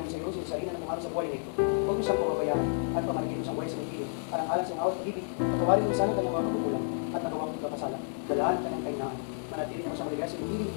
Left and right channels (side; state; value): right; silent; digital silence